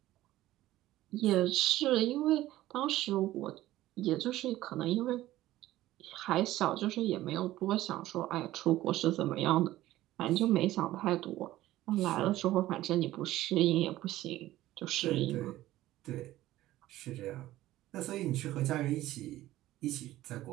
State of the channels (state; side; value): quieter; left; 15.4 dB